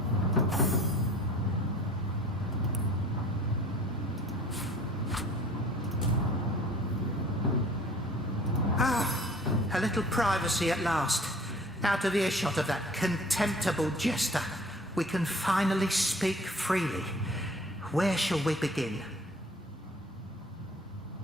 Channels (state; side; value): normal; both; correlation 0.49